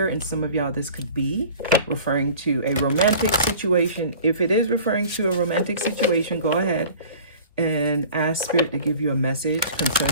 and some of y'all, this could be referring to a romantic situation. If it is referring to a romantic situation, go ahead and ask Spirit to give you a message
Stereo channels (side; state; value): both; inverted; correlation -0.44